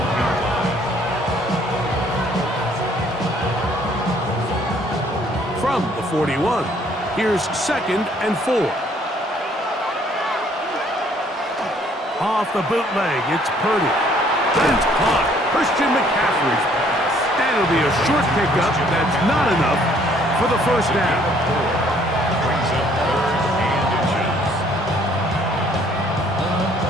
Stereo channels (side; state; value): both; normal; correlation 0.62